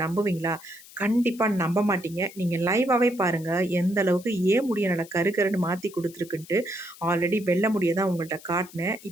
நம்புவீங்களா? கண்டிப்பா நம்ப மாட்டீங்க. நீங்க லைவாவே பாருங்க. எந்த அளவுக்கு ஏன் முடிய நல்லா கருன்னு மாத்தி குடுத்துருக்குன்ட்டு. ஆல்ரெடி வெள்ள முடிய தான் உங்கள்ட்ட காட்டுனேன்.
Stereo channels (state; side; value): noise; left; hiss, 20 dB below the sound